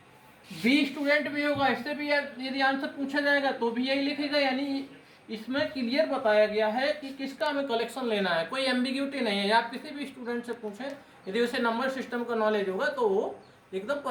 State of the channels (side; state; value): both; identical; correlation 1.00